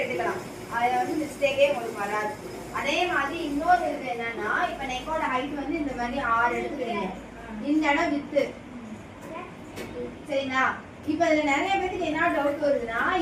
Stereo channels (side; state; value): both; identical; correlation 1.00